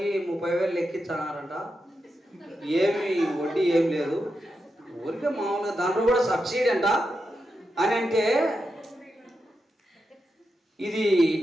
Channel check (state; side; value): normal; both; correlation 0.87